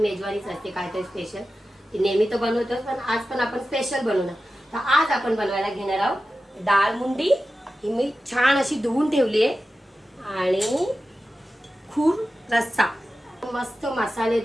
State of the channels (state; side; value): normal; both; correlation 0.93